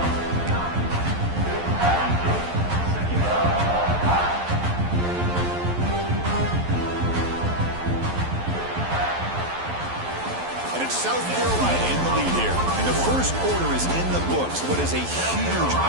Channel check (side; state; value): left; late; 11 ms